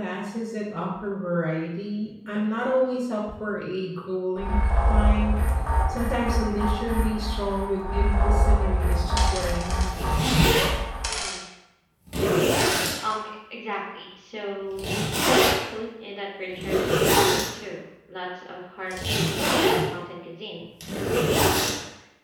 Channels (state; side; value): identical; both; correlation 1.00